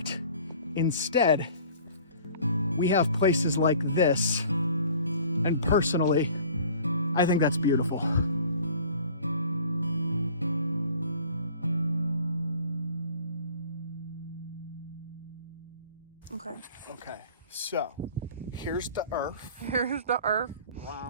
Instead, we have places like this, and personally, I think that's beautiful. Okay, so here's the earth. Here's the earth.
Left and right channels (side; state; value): both; inverted; correlation -0.48